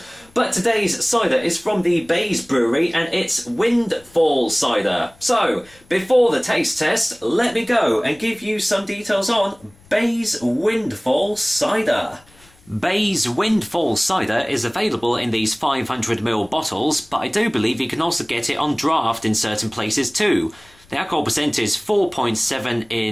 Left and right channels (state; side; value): noise; left; rumble, 28 dB below the sound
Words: But today's cider is from the Bays Brewery, and it's Windfall cider. So, before the taste test, let me go and give you some details on Bays Windfall cider. Bays Windfall cider is available in these 500ml bottles, but I do believe you can also get it on draft in certain places too. The alcohol percent is 4.7